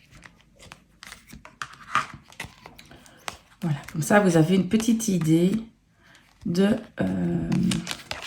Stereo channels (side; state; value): both; identical; correlation 1.00